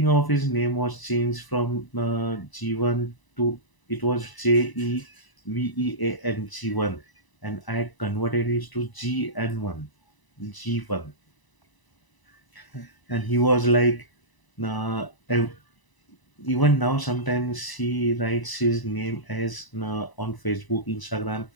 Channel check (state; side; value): late; right; 1.0 ms